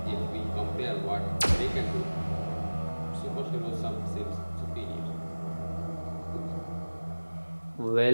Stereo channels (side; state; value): both; inverted; correlation -1.00